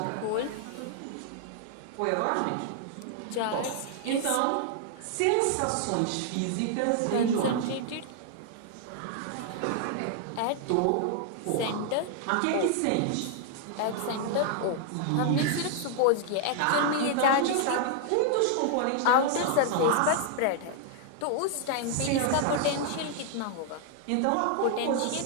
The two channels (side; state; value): both; different; correlation 0.00